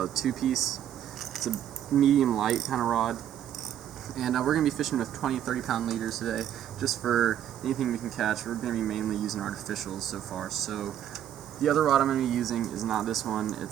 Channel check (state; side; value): quieter; left; 10.6 dB